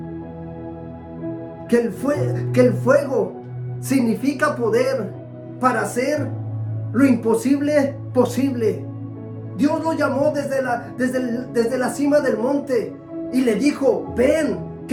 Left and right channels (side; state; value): both; identical; correlation 1.00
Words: que el fuego significa poder para hacer lo imposible posible. Dios lo llamó desde la cima del monte y le dijo: ven,